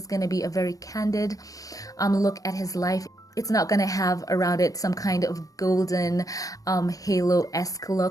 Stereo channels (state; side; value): late; right; 0.17 ms